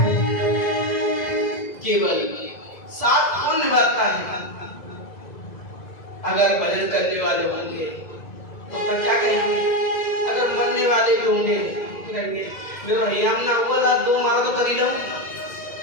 केवल साथ कौन निभाता है? अगर भजन करने वाले होंगे तो क्या कहेंगे? अगर मरने वाले भी होंगे तो कहेंगे मेरा भैया ना हुआ था, दो मारा तो कर ही लो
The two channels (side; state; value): right; late; 2.0 ms